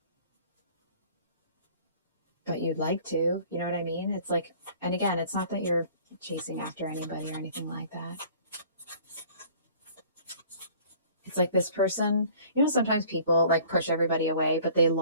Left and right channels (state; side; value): inverted; both; correlation -0.51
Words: But you'd like to, you know what I mean? It's like, and again, it's not that you're chasing after anybody or anything like that. It's like this person, you know, sometimes people like push everybody away, but they